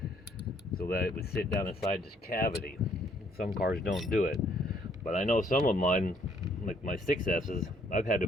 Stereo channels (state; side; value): normal; both; correlation 0.66